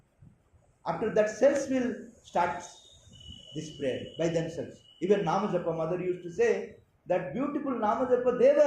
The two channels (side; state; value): both; identical; correlation 1.00